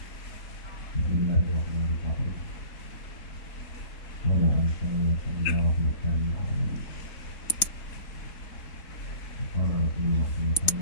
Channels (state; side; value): late; right; 4.0 ms